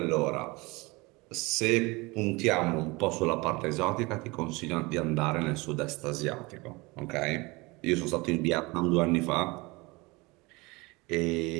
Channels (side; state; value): left; quieter; 24.4 dB